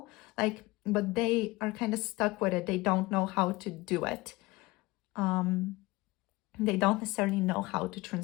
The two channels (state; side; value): quieter; right; 21.3 dB